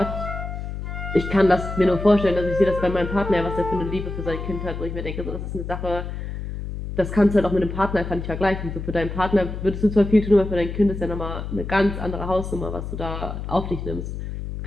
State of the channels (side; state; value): left; noise; hum, 6 dB below the sound